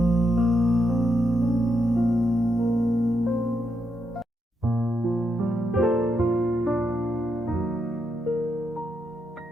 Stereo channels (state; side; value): normal; both; correlation 0.81